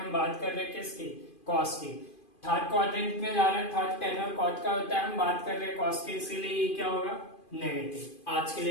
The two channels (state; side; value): late; right; 2.5 ms